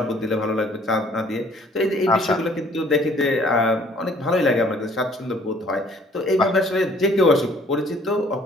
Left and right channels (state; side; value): normal; both; correlation 0.57